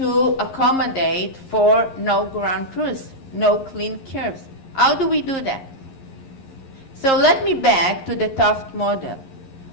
accommodate for no ground truth, no clean curves. How do we do that? So let me back to the Taft model.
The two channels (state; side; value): late; right; 11 ms